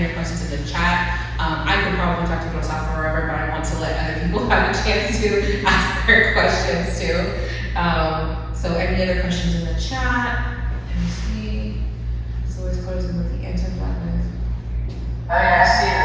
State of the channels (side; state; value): both; identical; correlation 1.00